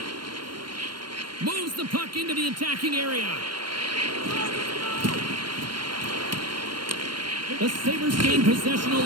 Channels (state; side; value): late; left; 0.72 ms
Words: Moves the puck into the attacking area. The Sabres gain possession